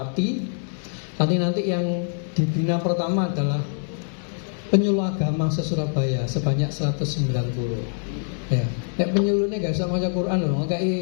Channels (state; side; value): silent; right; 62 dB below the other